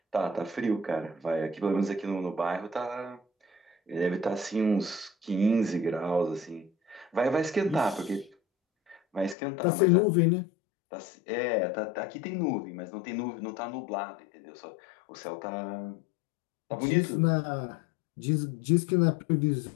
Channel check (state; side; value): drops out; right; at 9.3 s